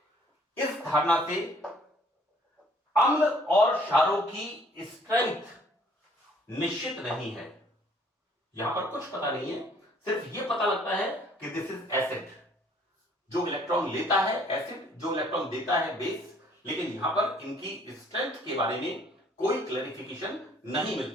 इस धारणा से अम्ल और क्षारों की स्ट्रेंथ निश्चित नहीं है। यहां पर कुछ पता नहीं है, सिर्फ यह पता लगता है कि दिस इज एसिड, जो इलेक्ट्रॉन लेता है एसिड, जो इलेक्ट्रॉन देता है बेस, लेकिन यहां पर इनकी स्ट्रेंथ के बारे में कोई क्लैरिफिकेशन नहीं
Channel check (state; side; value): normal; both; correlation 0.59